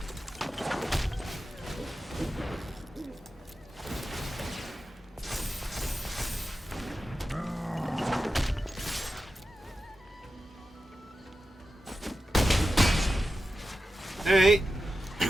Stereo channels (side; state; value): both; normal; correlation 0.92